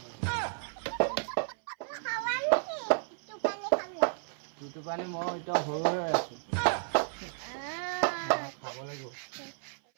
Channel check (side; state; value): left; silent; 56 dB below the other